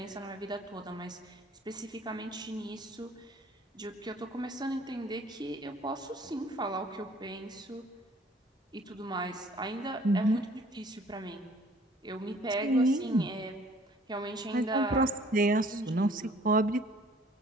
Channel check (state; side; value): normal; both; correlation 0.55